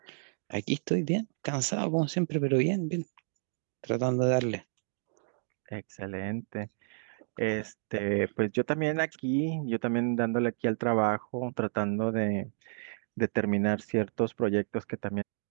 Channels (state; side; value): silent; left; digital silence